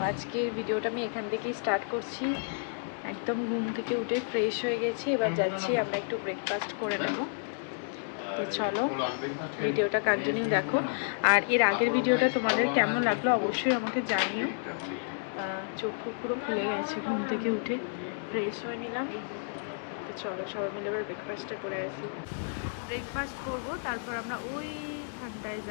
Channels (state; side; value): silent; right; digital silence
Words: আজকে ভিডিওটা আমি এখান থেকেই স্টার্ট করছি। একদম ঘুম থেকে উঠে ফ্রেশ হয়ে গেছি, এবার যাচ্ছি আমরা একটু ব্রেকফাস্ট করে নেব। তো চলো ভিডিওটা কন্টিনিউ দেখো। আর এর আগের ভিডিওটা তোমাদের কেমন লাগলো অবশ্যই আমাকে জানিও। চোখ পুরো খুলে গেছে, ঘুম থেকে উঠে ফ্রেশ হয়ে নিলাম। তো চলো সবাই মিলে এবার ব্রেকফাস্টটা করে আসি। ব্রেকফাস্ট করবো, তারপর আমরা ওইখানটায়